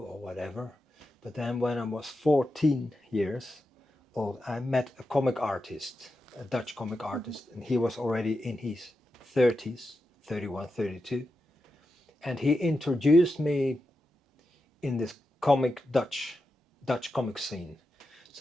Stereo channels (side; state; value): both; normal; correlation 0.89